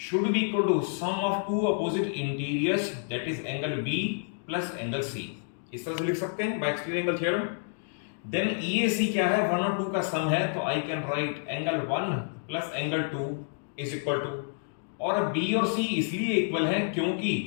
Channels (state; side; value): silent; right; digital silence